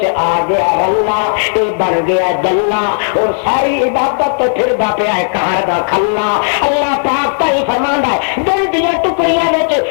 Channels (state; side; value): silent; right; digital silence